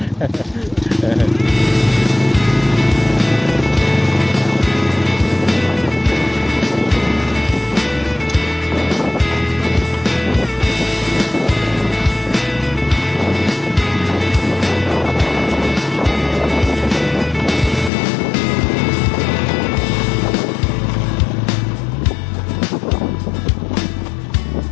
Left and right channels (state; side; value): drops out; right; at 17.9 s